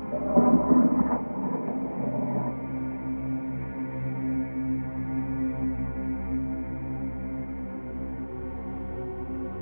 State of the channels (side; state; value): both; inverted; correlation -1.00